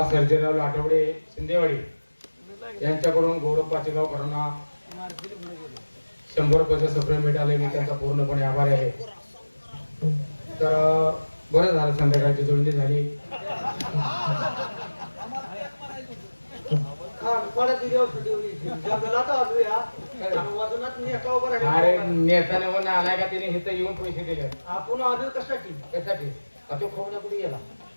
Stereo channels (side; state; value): both; inverted; correlation -1.00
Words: सर्जेराव लाटवडे शिंदेवाडी यांच्याकडून गौरव पाचेगावकरांना 100 रुपयाचे सप्रे मिळाले. मी त्यांचा पूर्णपणे आभारी आहे. तर बरं झालं संध्याकाळची जोडणी झाली. अरे नेत्याने म्हणून आलाय का तिने इथं येऊन पैसे दिले. आपण आलो कशासाठी? त्यासाठी तो खोवण्या कुठे गेला?